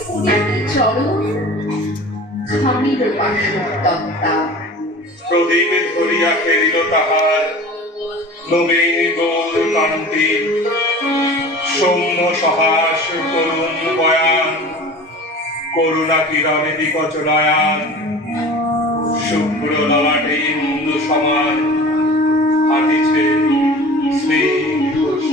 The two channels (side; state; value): both; normal; correlation 0.39